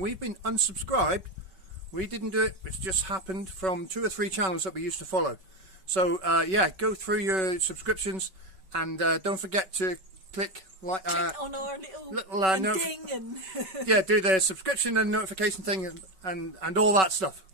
been unsubscribed. We didn't do it, it's just happened from 2 or 3 channels that we used to follow. So yeah, go through your subscriptions and don't forget to click like on our little ding and yeah, do the subscription and notification thing and all that stuff.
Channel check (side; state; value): left; late; 5.3 ms